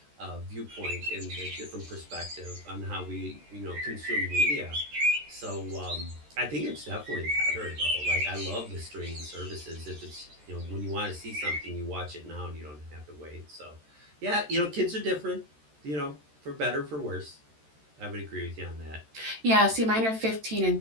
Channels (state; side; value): late; left; 13 ms